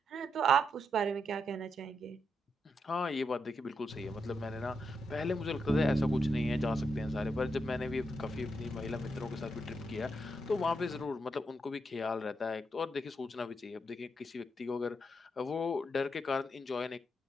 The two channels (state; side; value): normal; both; correlation 0.82